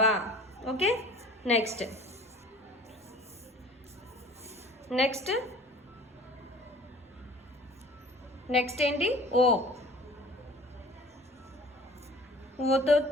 ఓకే, నెక్స్ట్ నెక్స్ట్ నెక్స్ట్ ఏంటి? ఓ. ఓతో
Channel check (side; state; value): both; normal; correlation 0.46